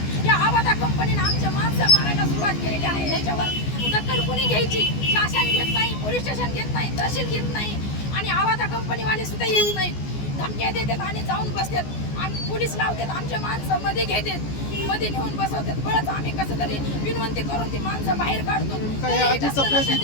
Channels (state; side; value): late; right; 14 ms